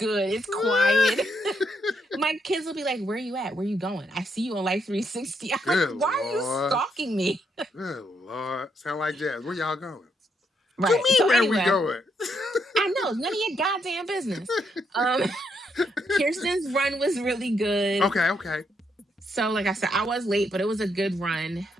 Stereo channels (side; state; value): both; normal; correlation 0.77